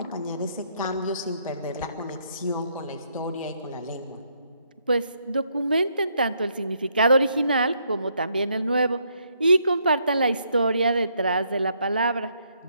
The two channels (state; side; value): inverted; both; correlation -0.73